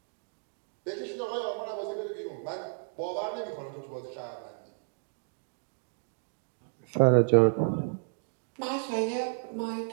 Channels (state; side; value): silent; left; digital silence